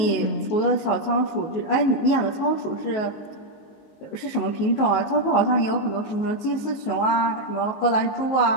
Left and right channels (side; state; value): right; late; 19 ms